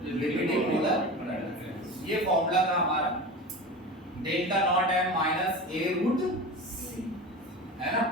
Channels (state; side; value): normal; both; correlation 0.30